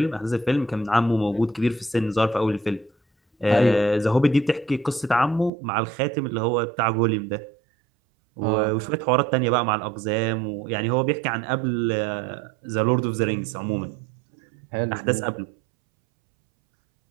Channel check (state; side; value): drops out; left; at 5.5 s